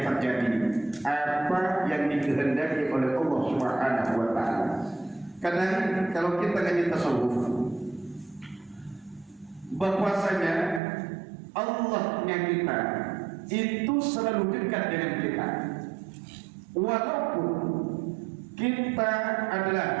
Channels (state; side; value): drops out; left; at 10.8 s